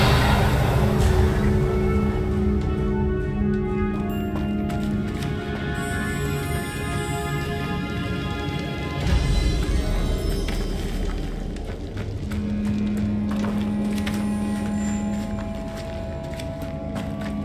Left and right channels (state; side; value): identical; both; correlation 1.00